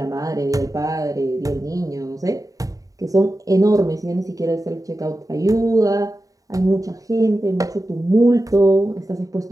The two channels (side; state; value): left; late; 0.17 ms